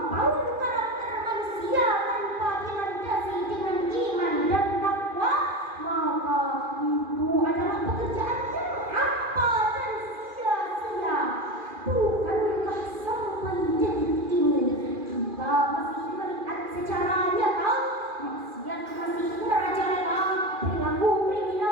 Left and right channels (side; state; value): left; late; 2.4 ms